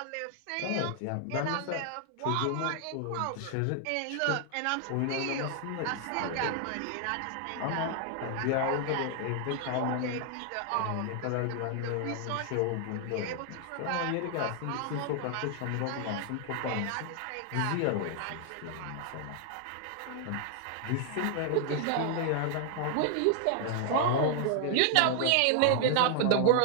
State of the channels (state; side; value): different; both; correlation 0.00